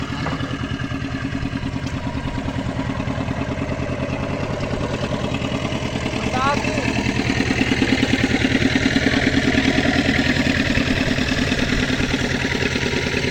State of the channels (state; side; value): identical; both; correlation 1.00